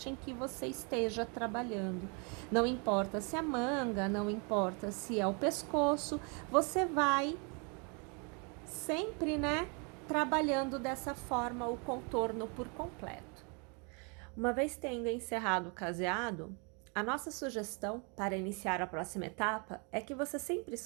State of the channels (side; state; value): left; quieter; 34.8 dB